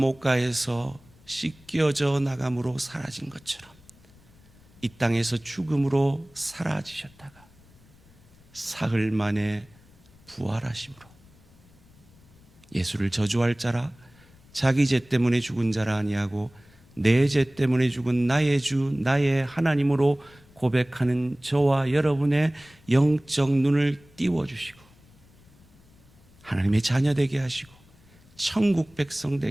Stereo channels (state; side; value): noise; left; rumble, 27 dB below the sound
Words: 씻겨져 나감으로 사라진 것처럼 이 땅에서 죽음으로 사라지셨다가 사흘 만에 부활하심으로 예수를 저주할 자라, 자기 죄 때문에 죽은 자라 아니하고 내 죄 때문에 죽은 나의 주 나의 하나님으로 고백하는 저와 여러분의 영적 눈을 띄워주시고 하나님의 자녀 되게 하시고 천국 백성